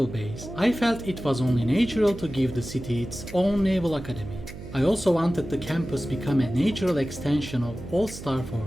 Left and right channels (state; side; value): noise; right; hum, 13 dB below the sound